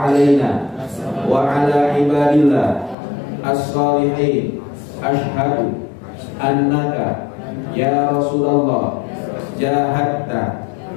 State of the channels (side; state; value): right; drops out; at 3.0 s